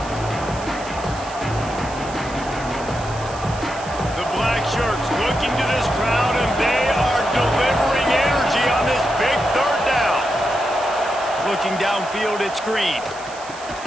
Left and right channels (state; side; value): noise; right; hiss, 17 dB below the sound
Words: The black shirts looking to this crowd, and they are delivering energy on this big 3rd down. Looking downfield, it's Green.